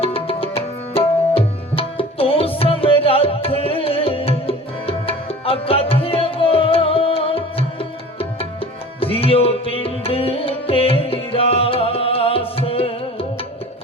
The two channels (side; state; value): both; normal; correlation 0.42